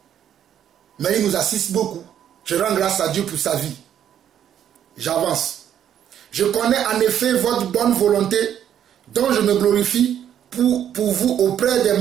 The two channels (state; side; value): quieter; left; 9.9 dB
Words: Mais il nous assiste beaucoup. Je rends grâce à Dieu pour sa vie. J'avance. Je connais en effet votre bonne volonté, dont je me glorifie pour vous auprès des